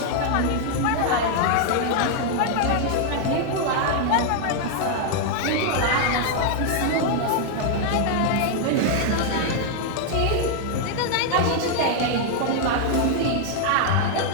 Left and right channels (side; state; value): both; different; correlation 0.00